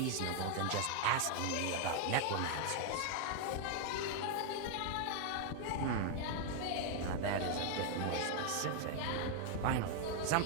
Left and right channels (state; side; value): different; both; correlation 0.00